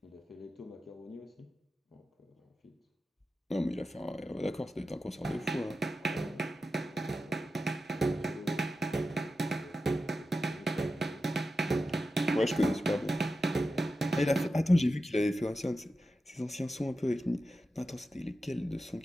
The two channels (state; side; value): normal; both; correlation 0.91